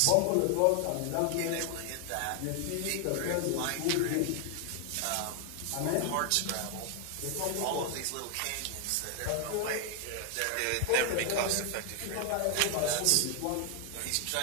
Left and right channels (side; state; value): both; different; correlation 0.00